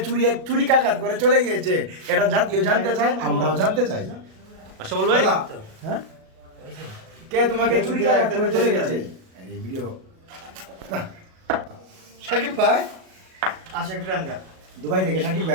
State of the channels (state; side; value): late; left; 37 ms